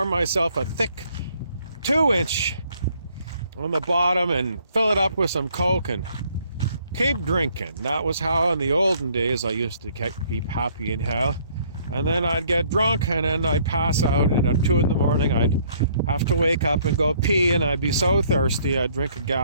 myself a thick 2-inch on the bottom and fill it up with some Coke and keep drinking. That was how in the olden days I used to keep happy in hell. And then I'd get drunk and then I'd pass out, and at 2 a.m. I'd have to wake up and go pee, and I'd be so thirsty I'd drink a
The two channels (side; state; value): both; inverted; correlation -0.63